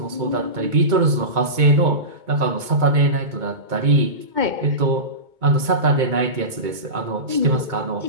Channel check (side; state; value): left; late; 2.2 ms